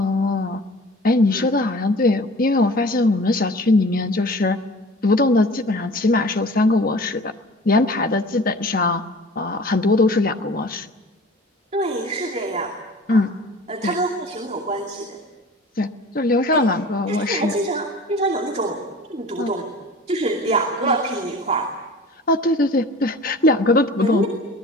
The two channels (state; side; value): normal; both; correlation 0.43